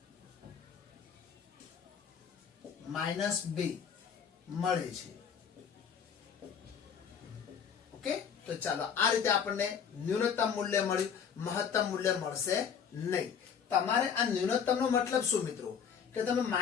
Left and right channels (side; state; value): right; quieter; 7.3 dB